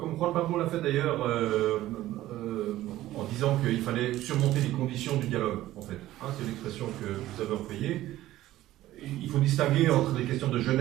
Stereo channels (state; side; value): quieter; left; 15.0 dB